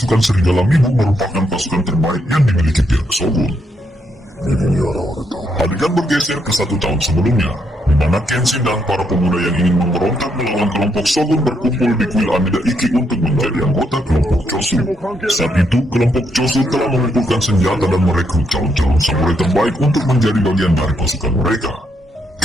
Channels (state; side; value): normal; both; correlation 0.77